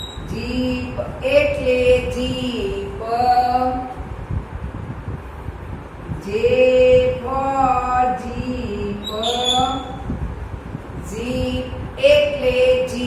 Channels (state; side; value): identical; both; correlation 1.00